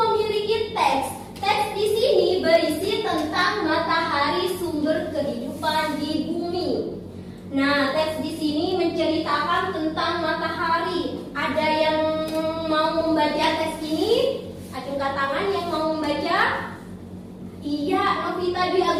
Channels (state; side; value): identical; both; correlation 1.00